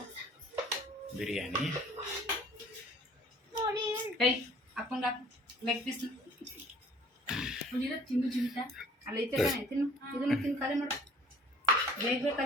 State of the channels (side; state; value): both; normal; correlation 0.53